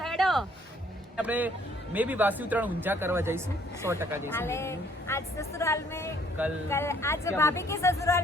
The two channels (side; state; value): both; normal; correlation 0.63